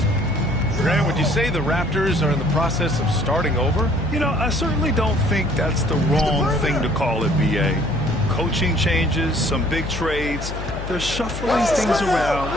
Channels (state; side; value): noise; left; hum, 8 dB below the sound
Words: Grant, would you say the Raptors are in the process of starting over? You know, I certainly don't think that's the wrong thing to call it, B.A. Coaching changes, some big trades. They're shuffling things around